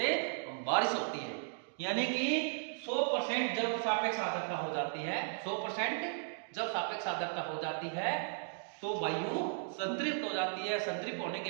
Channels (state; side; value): silent; left; digital silence